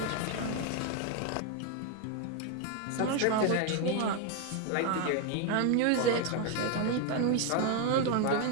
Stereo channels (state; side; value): different; both; correlation 0.01